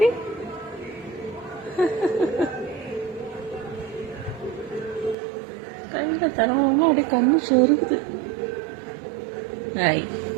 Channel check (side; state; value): left; drops out; at 5.2 s